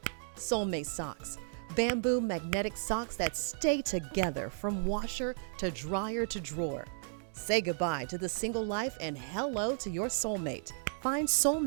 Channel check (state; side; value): silent; left; digital silence